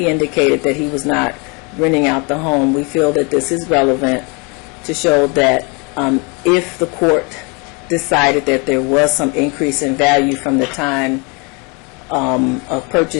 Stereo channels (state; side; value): quieter; right; 31.2 dB